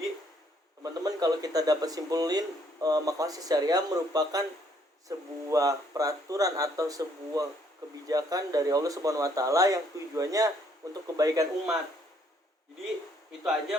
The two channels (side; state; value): both; normal; correlation 0.67